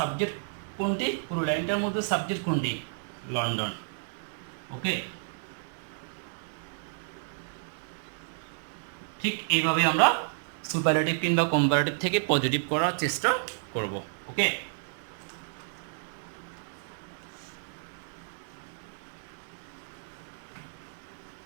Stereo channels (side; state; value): left; silent; digital silence